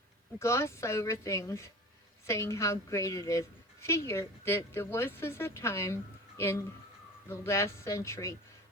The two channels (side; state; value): both; normal; correlation 0.36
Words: gloss over things, saying how great it is. Figure that there was a time in the last century